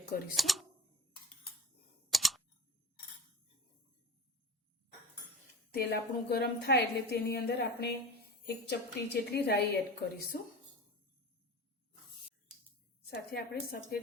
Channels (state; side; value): normal; both; correlation 0.35